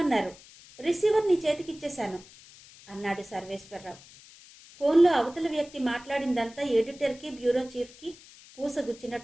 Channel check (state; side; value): noise; left; hiss, 22 dB below the sound